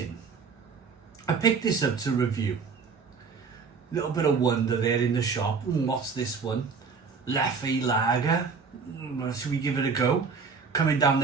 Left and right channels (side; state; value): left; quieter; 5.2 dB